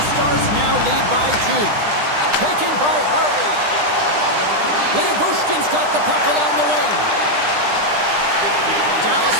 Stars now lead by 2. Taken by Harley. Leobushkin's got the puck along the wing. Dallas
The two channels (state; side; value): late; left; 9.9 ms